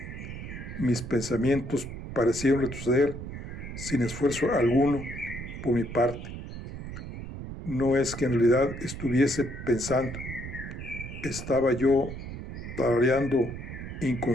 mis pensamientos parecieron retroceder sin esfuerzo alguno por mi parte. No es que en realidad estuviese pensando, estaba yo tarareando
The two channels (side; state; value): right; noise; rumble, 9 dB below the sound